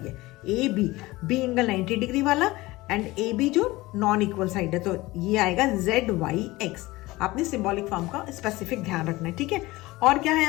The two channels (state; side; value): quieter; right; 20.0 dB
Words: ए बी एंगल 90 डिग्री वाला एंड ए बी जो नॉन इक्वल साइड है, तो ये आएगा जेड वाई एक्स। आपने सिंबॉलिक फॉर्म का स्पेसिफिक ध्यान रखना है, ठीक है। और क्या है